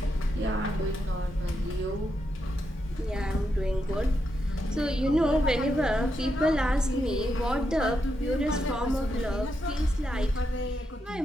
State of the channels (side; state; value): both; normal; correlation 0.83